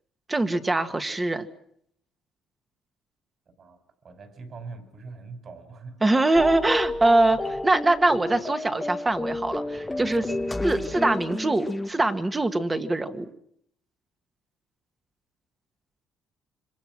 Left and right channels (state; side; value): normal; both; correlation 0.96